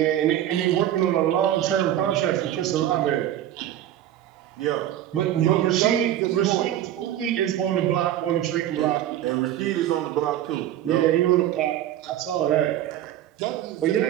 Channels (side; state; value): left; quieter; 12.1 dB